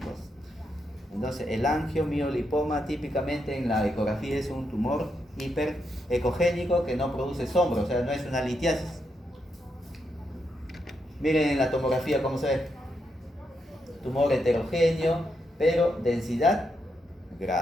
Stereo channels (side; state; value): both; normal; correlation 0.82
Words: Entonces, el angiomiolipoma típicamente en la ecografía es un tumor hiperecogénico que no produce sombra, o sea, no es una litiasis. Miren en la tomografía cómo se ve. Tumor heterogéneo, pero densidad